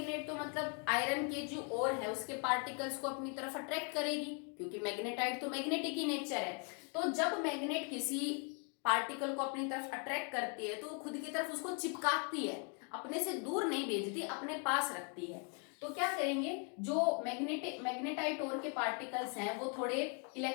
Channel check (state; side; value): quieter; right; 38.7 dB